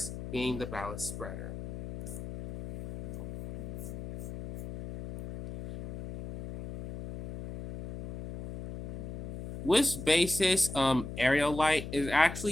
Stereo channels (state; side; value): noise; left; hum, 9 dB below the sound